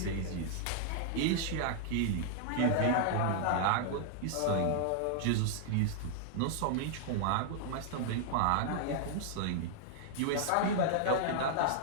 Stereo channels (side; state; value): both; different; correlation -0.01